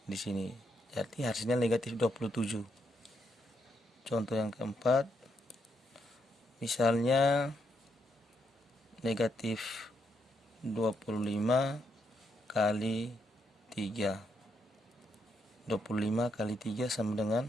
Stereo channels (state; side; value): normal; both; correlation 0.78